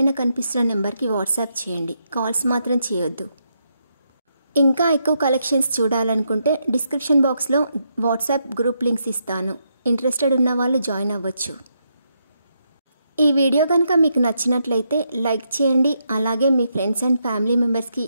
కనిపిస్తున్న నెంబర్కి వాట్సాప్ చేయండి. కాల్స్ మాత్రం చేయొద్దు. ఇంకా ఎక్కువ కలెక్షన్స్ చూడాలనుకుంటే డిస్క్రిప్షన్ బాక్స్లో వాట్సాప్ గ్రూప్ లింక్స్ ఇస్తాను. ఇంట్రెస్టెడ్ ఉన్న వాళ్ళు జాయిన్ అవ్వచ్చు. ఈ వీడియో కనుక మీకు నచ్చినట్లయితే లైక్ చేయండి. అలాగే మీ ఫ్రెండ్స్ అండ్ ఫ్యామిలీ మెంబర్స్కి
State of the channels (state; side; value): inverted; both; correlation -0.80